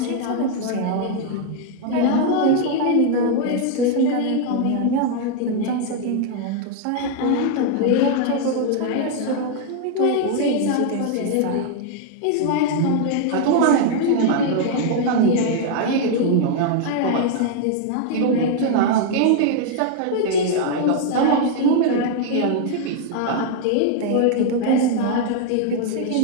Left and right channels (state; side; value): different; both; correlation 0.00